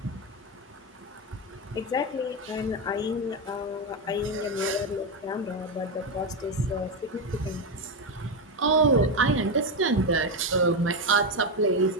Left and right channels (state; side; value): normal; both; correlation 0.09